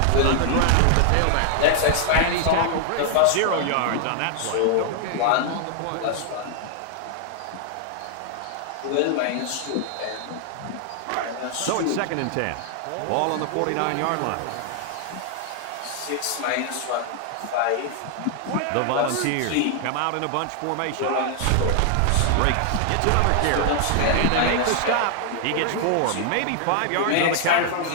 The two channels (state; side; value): different; both; correlation 0.00